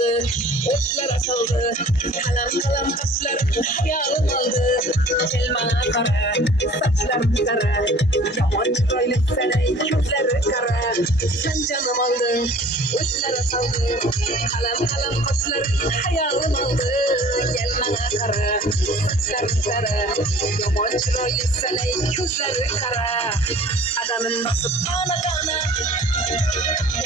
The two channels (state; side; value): normal; both; correlation 0.49